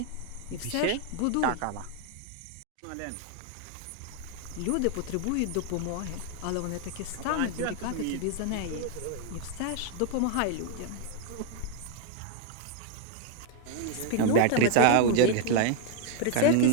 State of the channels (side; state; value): both; different; correlation 0.00